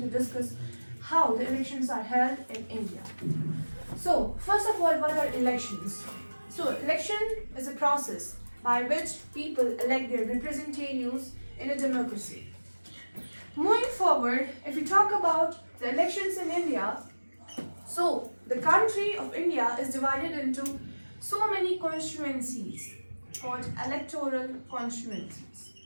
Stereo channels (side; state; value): both; inverted; correlation -1.00